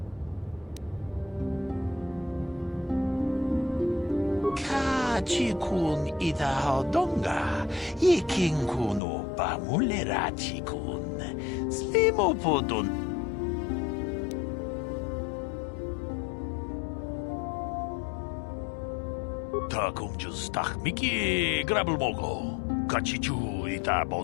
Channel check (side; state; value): right; drops out; at 9.0 s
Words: Chikun ida hodonga, ikin kuno ba mulera chikun, slimo podon. Takum justach miki grabelmogo, kachichu ita